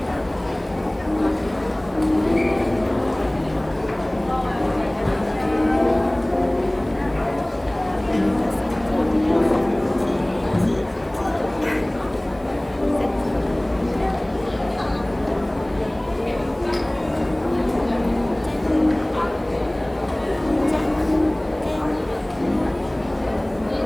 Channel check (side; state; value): right; noise; hiss, 30 dB below the sound